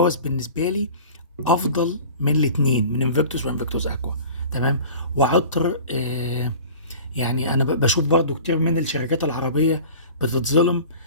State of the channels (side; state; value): both; inverted; correlation -0.41